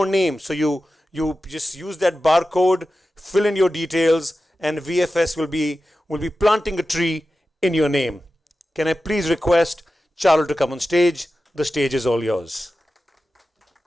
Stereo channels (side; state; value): both; normal; correlation 0.93